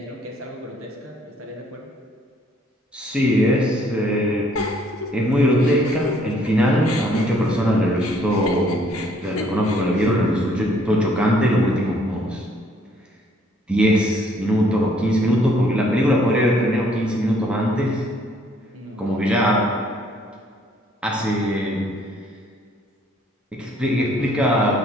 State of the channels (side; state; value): both; normal; correlation 0.63